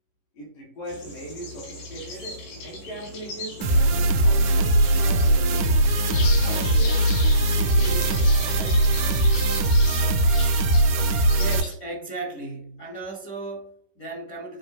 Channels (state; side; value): late; right; 11 ms